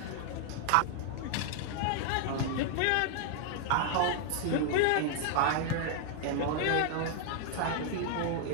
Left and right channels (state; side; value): different; both; correlation 0.00